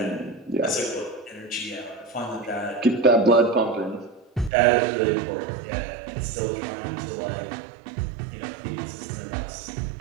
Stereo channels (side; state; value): left; drops out; at 4.5 s